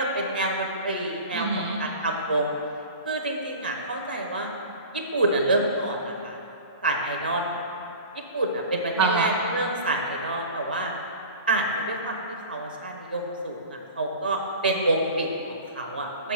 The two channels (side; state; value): both; inverted; correlation -0.37